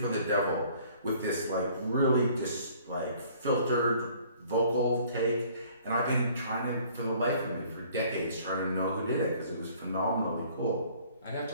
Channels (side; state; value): both; inverted; correlation -0.56